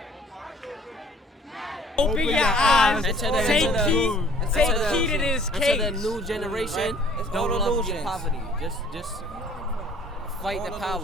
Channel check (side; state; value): both; normal; correlation 0.56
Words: Open your eyes. Take heed to this case. Until the new generation, don't love your poverty. Just fight the